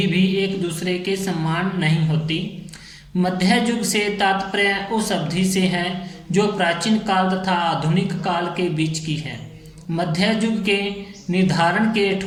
भी एक दूसरे के समान नहीं होती। मध्य युग से तात्पर्य उस अवधि से है जो प्राचीन काल तथा आधुनिक काल के बीच की है। मध्य युग के निर्धारण के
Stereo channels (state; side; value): identical; both; correlation 1.00